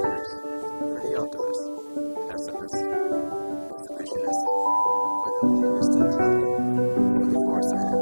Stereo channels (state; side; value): inverted; both; correlation -1.00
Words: for the optimist, pessimist, exhibitionist, for the long distance love, for the far-sighted,